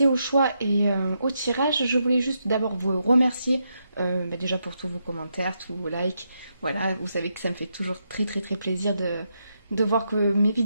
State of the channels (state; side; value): inverted; both; correlation -0.82